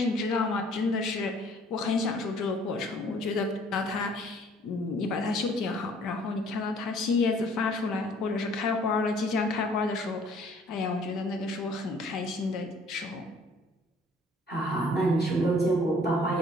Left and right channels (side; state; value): both; normal; correlation 0.57